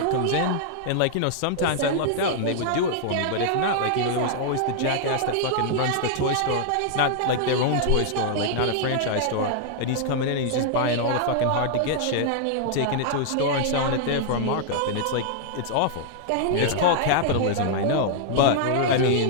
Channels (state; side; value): different; both; correlation -0.01